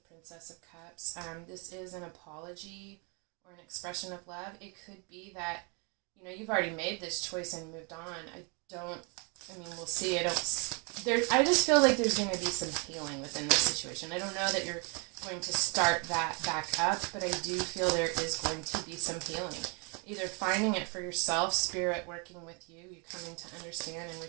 Princess of Cups. This is an apology or an expression of love. It could be that, you've already made this choice and moved on. We'll see. I just feel like there's going to be some healing within this situation. I don't know that you're going to start that back up, but I do feel there is going to be some healing. Either finding it for yourself, spirit working with you coming to understand and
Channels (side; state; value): left; quieter; 33.8 dB